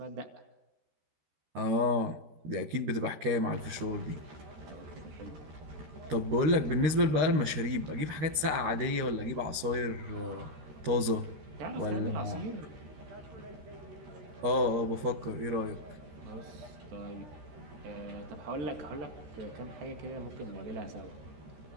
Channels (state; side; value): late; left; 13 ms